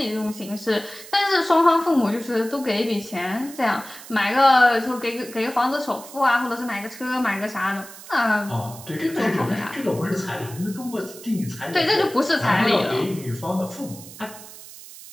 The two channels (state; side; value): noise; right; hiss, 16 dB below the sound